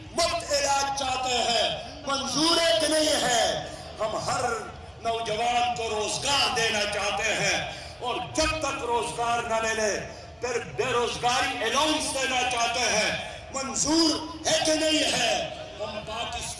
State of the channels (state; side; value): identical; both; correlation 1.00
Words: مفت علاج چاہتے ہیں. منظور ہے کہ نہیں ہے؟ ہم ہر نوجوان کو روزگار دینا چاہتے ہیں اور جب تک روزگار نہ ملے پھر بے روزگاری الاؤنس دینا چاہتے ہیں. منظور ہے کہ نہیں ہے؟ ہم